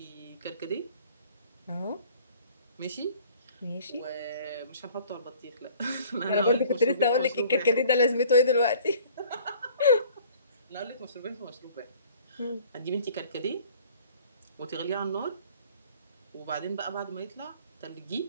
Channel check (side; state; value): both; inverted; correlation -0.52